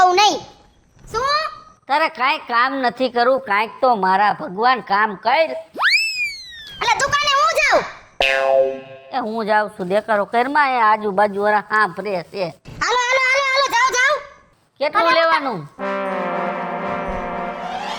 નહીં। શું? તારે કાંઈ કામ નથી કરવું, કાંઈક તો મારા ભગવાન કામ કર। એટલે દુકાને હું જાઉં? એ હું જાઉં છું, દેખારો કરમાં એ આજુબાજુ વાળા હા ફરે છે। હાલો હાલો હાલો હાલો જાઓ જાઓ। કેટલું લેવાનું?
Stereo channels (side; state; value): both; identical; correlation 1.00